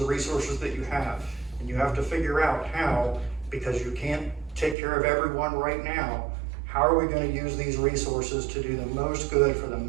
resources that you have, and you have to figure out how, because you can't take care of everyone right now. How are we going to use these resources to do the most good for the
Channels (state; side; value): drops out; left; at 4.8 s